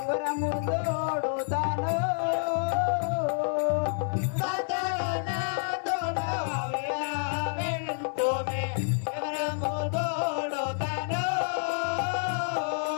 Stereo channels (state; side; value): silent; right; 59 dB below the other